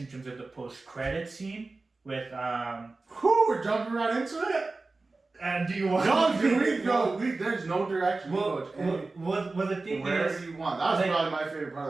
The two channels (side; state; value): left; quieter; 3.5 dB